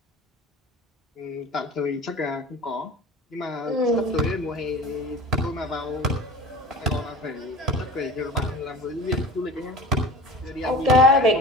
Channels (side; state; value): both; normal; correlation 0.38